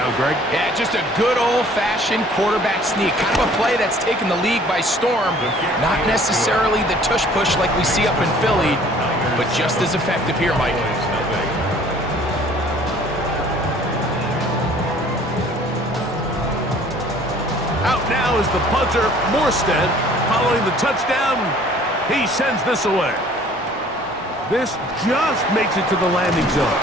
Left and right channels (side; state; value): both; normal; correlation 0.54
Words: Greg. Yeah, just a good old-fashioned quarterback sneak. Kind of a play that's taken the league by storm. Not necessarily the tush-push like we see up in Philly, but just as effective here, Mike. Out now is the punter, Morstead. Following the touchdown, he sends this away. This just makes it to the landing zone.